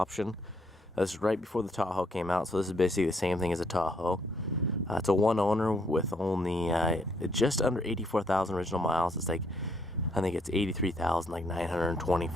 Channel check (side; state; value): both; normal; correlation 0.70